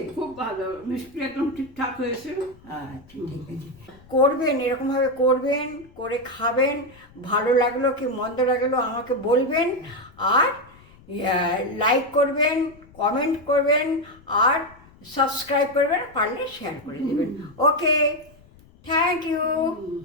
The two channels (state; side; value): noise; left; rumble, 26 dB below the sound